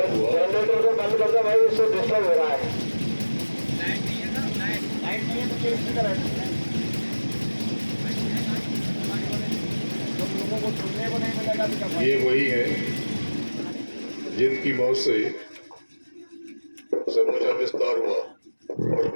हुआ। बंद कर दो भाई, उससे डिस्टर्ब हो रहा है। ये वही है जिनकी मौत से समूचा विस्तार हुआ और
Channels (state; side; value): inverted; both; correlation -1.00